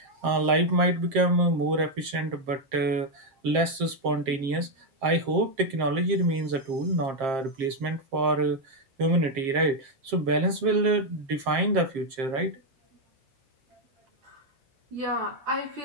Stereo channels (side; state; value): left; late; 7.5 ms